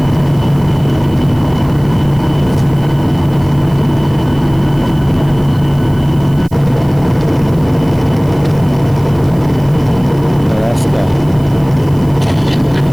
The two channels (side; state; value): right; noise; hiss, 25 dB below the sound